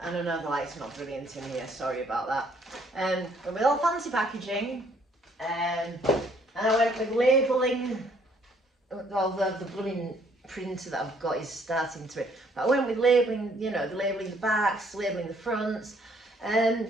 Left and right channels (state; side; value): normal; both; correlation 0.64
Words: And I know the light's not brilliant in here, sorry about that. But with all fancy packaging, and I went with labelling. All the blooming printer that I've got is starting to it. But I went with labelling, you know, the labelling the backs, labelling the fronts. I